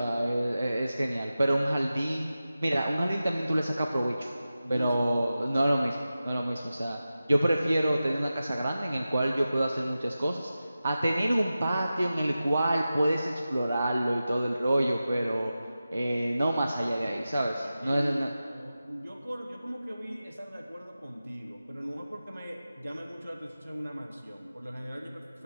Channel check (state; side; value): inverted; both; correlation -0.94